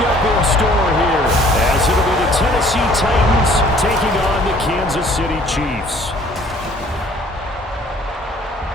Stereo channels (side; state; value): both; normal; correlation 0.56